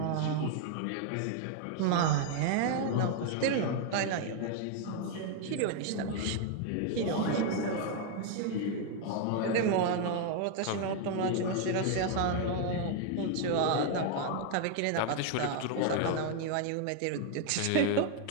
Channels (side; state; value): both; different; correlation 0.00